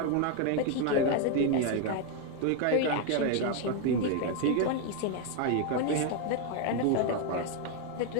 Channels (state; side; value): different; both; correlation 0.01